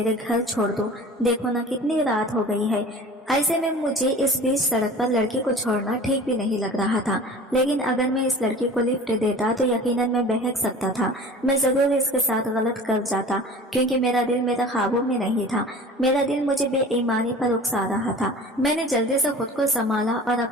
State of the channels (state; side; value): normal; both; correlation 0.41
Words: घर छोड़ दो। देखो ना कितनी रात हो गई है। ऐसे में मुझे इस बीच सड़क पर लड़की को छोड़ना ठीक भी नहीं लग रहा था, लेकिन अगर मैं इस लड़की को लिफ्ट देता तो यकीनन मैं बहक सकता था। मैं जरूर इसके साथ गलत कर जाता, क्योंकि मेरा दिल मेरे ख्वाबों में नहीं था। मेरा दिल मुझे बेईमानी पर उकसा रहा था। मैंने जल्दी से खुद को संभाला और